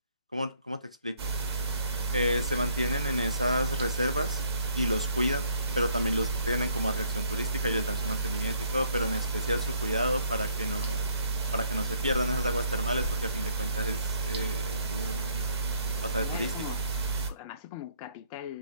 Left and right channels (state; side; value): inverted; both; correlation -0.65